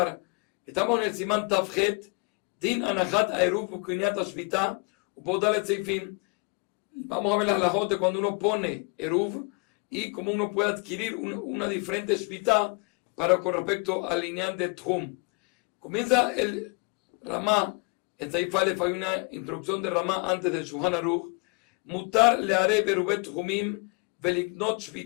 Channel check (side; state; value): right; quieter; 32.1 dB